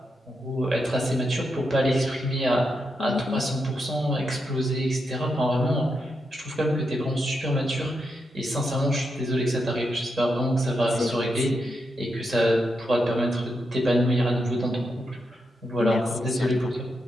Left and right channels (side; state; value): both; normal; correlation 0.84